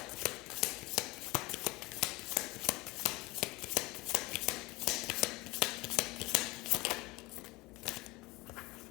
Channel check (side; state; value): right; quieter; 22.4 dB